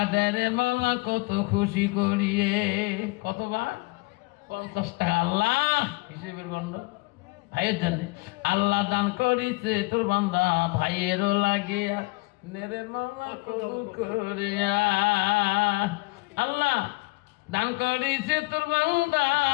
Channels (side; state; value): right; quieter; 25.4 dB